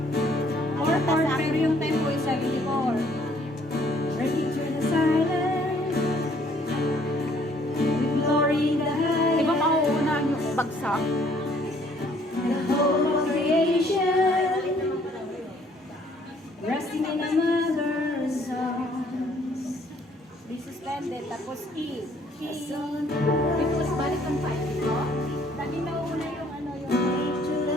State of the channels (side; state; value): both; normal; correlation 0.62